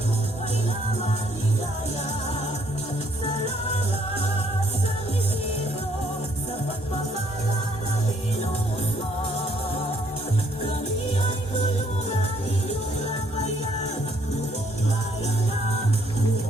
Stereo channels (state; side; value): normal; both; correlation 0.67